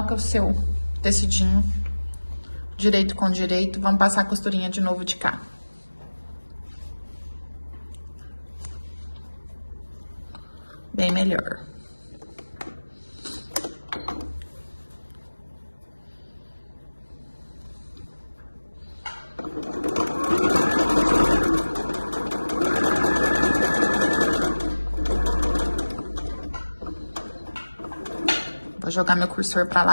o seu tecidinho direito com direito. Vamos passar a costurinha de novo de cá. Bem melhor. Vou jogar meu cursor pra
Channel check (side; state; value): both; inverted; correlation -1.00